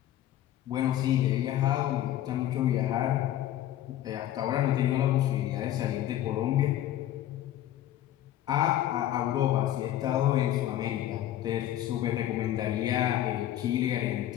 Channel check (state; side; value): quieter; right; 12.7 dB